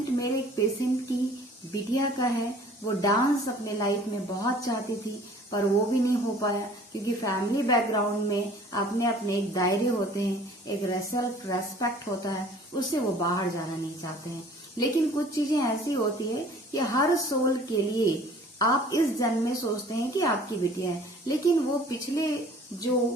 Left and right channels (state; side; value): normal; both; correlation 0.51